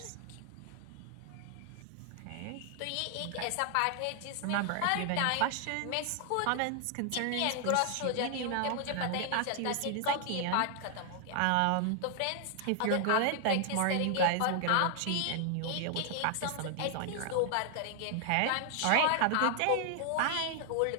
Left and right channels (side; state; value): both; different; correlation 0.00